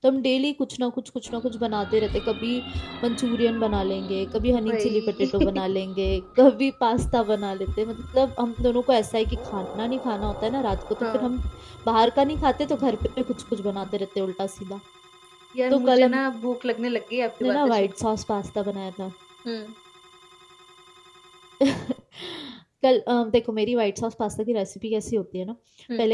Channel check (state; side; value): identical; both; correlation 1.00